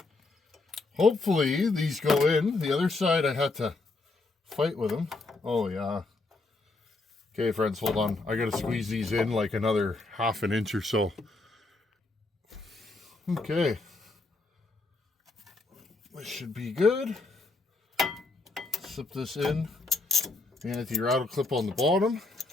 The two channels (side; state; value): right; quieter; 3.3 dB